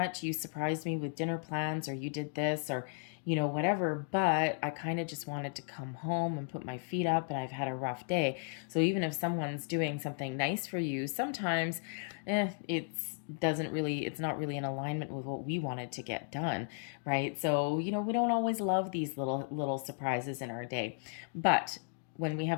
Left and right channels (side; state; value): right; silent; 55 dB below the other